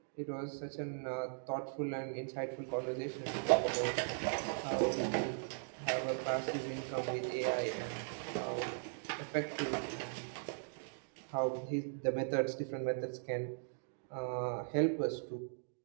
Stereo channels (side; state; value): left; silent; digital silence